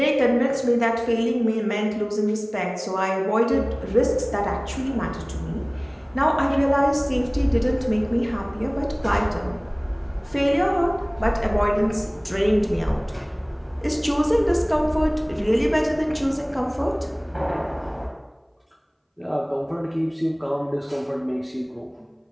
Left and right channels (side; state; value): both; identical; correlation 1.00